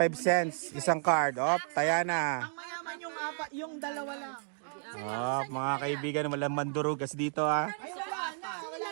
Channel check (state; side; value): silent; left; digital silence